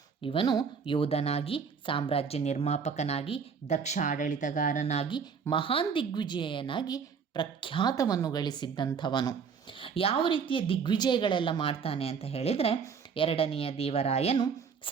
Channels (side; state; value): left; quieter; 6.2 dB